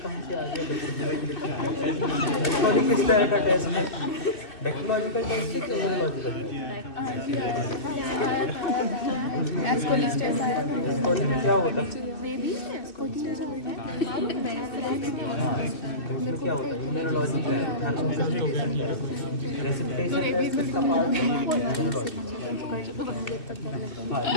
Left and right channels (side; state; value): right; late; 2.7 ms